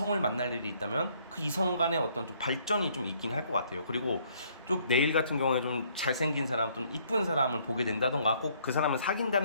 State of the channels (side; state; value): both; inverted; correlation -0.65